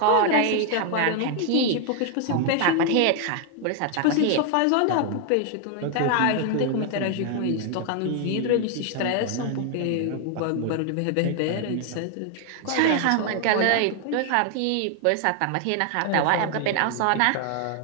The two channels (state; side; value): different; both; correlation 0.00